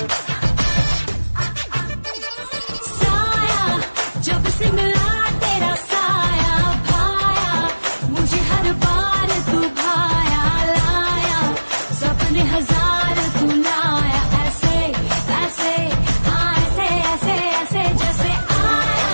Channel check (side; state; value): both; inverted; correlation -1.00